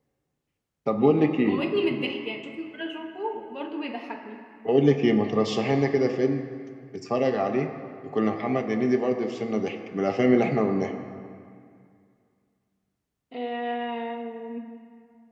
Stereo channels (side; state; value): both; identical; correlation 1.00